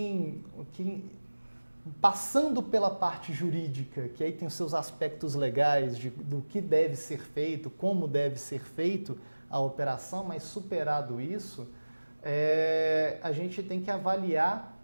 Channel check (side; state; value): both; inverted; correlation -1.00